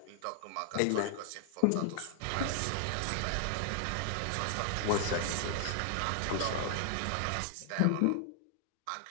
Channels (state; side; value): different; both; correlation 0.00